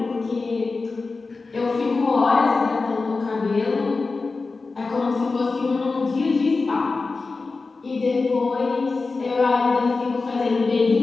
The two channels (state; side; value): quieter; right; 4.0 dB